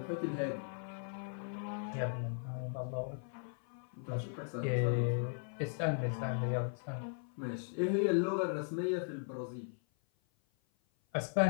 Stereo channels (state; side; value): silent; right; 53 dB below the other